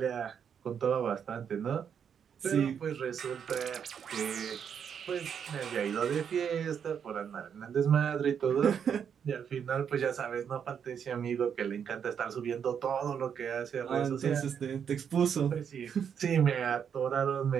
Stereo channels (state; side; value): quieter; left; 7.7 dB